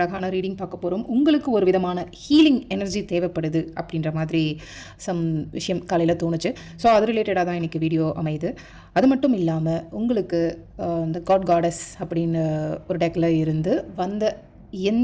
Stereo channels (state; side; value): identical; both; correlation 1.00